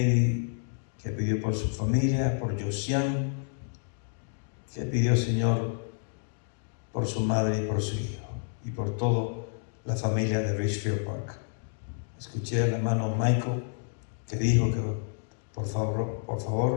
que pidió por su familia, por Josian, que pidió, Señor, por su madre y por su hijo, y por toda la familia de Richfield Park. Escuché al hermano Michael que dijo que por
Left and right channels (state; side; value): silent; right; digital silence